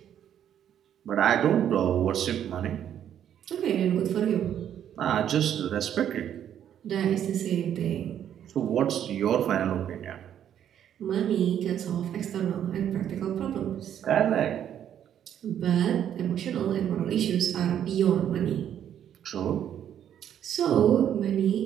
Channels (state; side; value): quieter; left; 9.9 dB